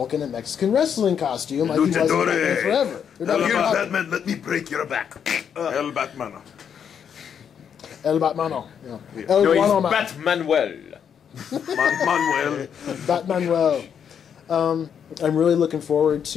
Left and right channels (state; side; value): quieter; right; 7.9 dB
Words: in a Mexican wrestling costume like he was in Batman Forever. Batman, let me break your back. El Batmano. El Batmano. Yeah. No, he's Batmanuel. Manuel. Batmanuel. I'm really looking forward